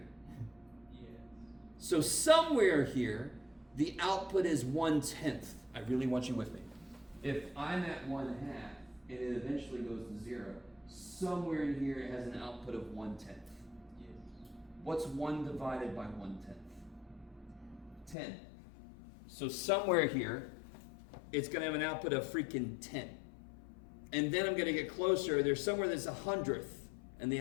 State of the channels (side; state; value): right; drops out; at 18.2 s